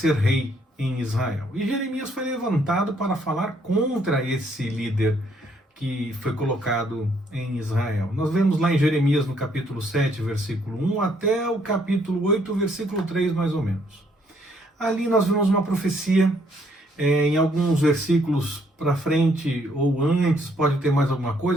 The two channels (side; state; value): both; normal; correlation 0.68